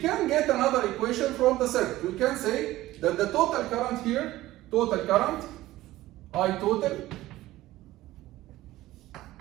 get another equation from the circuit. We can say that the total current here, total current, I total,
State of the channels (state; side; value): quieter; left; 16.3 dB